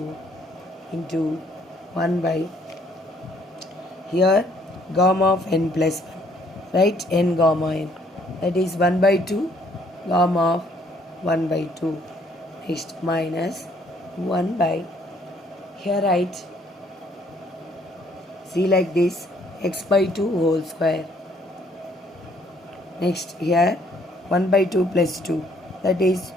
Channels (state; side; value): normal; both; correlation 0.65